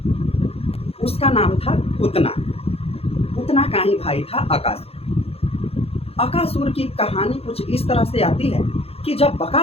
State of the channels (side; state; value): right; late; 0.29 ms